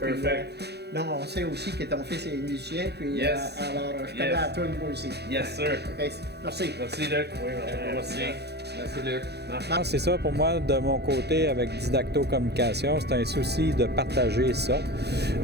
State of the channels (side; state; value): left; late; 0.48 ms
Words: Perfect. Donc, on sait aussi que ton fils est musicien. Puis, Yes. alors, je connais à toi moi aussi. Yes, sir. OK, merci. Merci, Luc. Oui, merci. Merci, Luc. C'est ça pour moi, de mon côté, avec Didacto Communication, c'est un souci de partager ça.